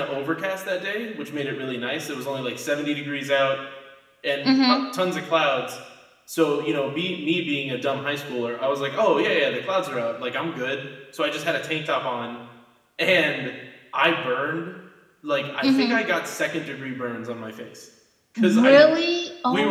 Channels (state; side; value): identical; both; correlation 1.00